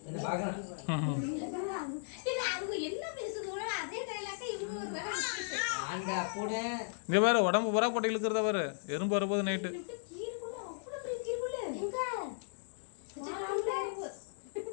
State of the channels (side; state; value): right; silent; digital silence